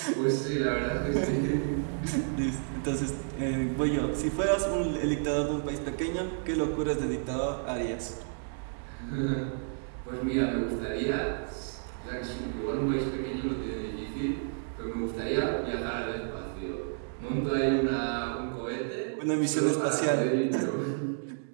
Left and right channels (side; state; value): left; silent; digital silence